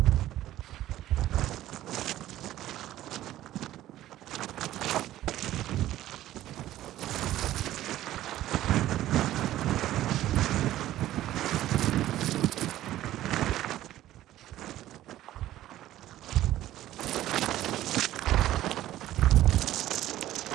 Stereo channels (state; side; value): quieter; left; 14.0 dB